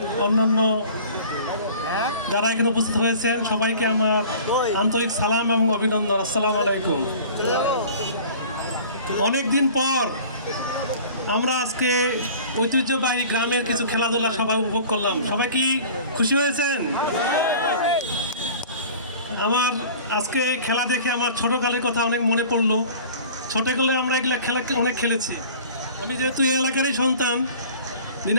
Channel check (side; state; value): both; inverted; correlation -0.44